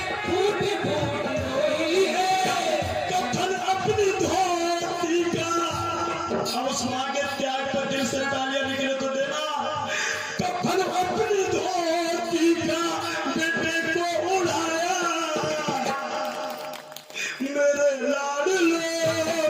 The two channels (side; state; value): both; identical; correlation 1.00